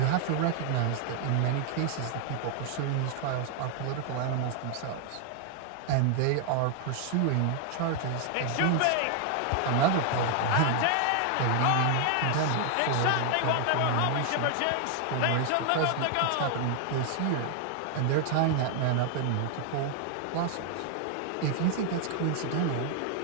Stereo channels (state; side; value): different; both; correlation 0.00